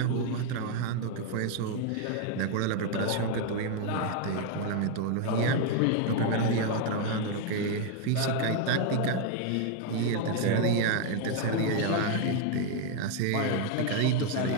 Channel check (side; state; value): both; different; correlation 0.00